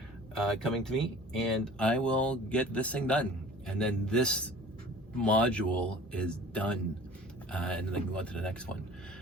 coming to me, and I will get this thing done, and then this module is done, and then I can go on to the next one.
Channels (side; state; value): both; normal; correlation 0.45